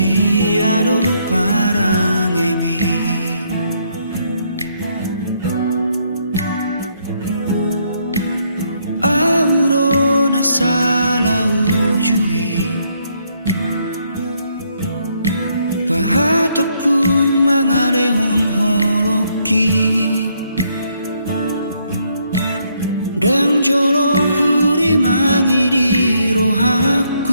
parang emi Aurona salah ujui mangalehon holoki dang jolo huri mangiri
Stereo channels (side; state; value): both; inverted; correlation -0.73